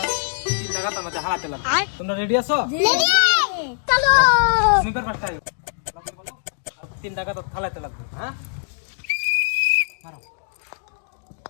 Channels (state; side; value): silent; right; digital silence